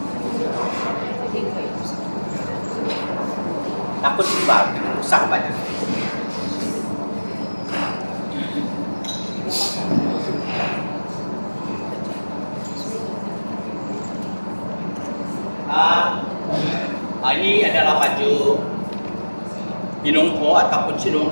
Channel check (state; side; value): inverted; both; correlation -1.00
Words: takut juga rusak banyak. Ini adalah baju pinungko ataupun